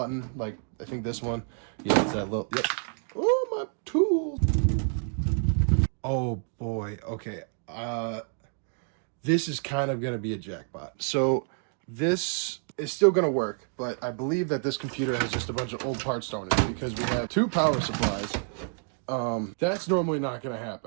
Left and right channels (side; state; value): left; silent; 56 dB below the other